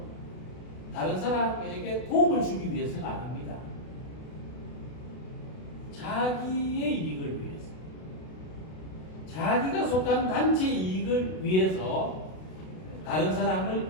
다른 사람에게 도움을 주기 위해서가 아닙니다. 자기의 이익을 위해서, 자기가 속한 단체 이익을 위해서 다른 사람을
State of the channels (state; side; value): late; right; 32 ms